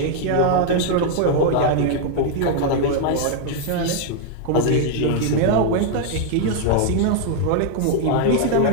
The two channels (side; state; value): both; different; correlation 0.00